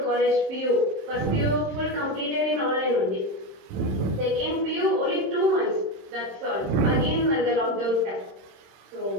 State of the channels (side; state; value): left; late; 27 ms